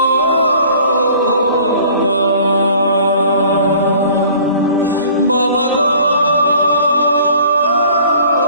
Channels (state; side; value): inverted; both; correlation -0.50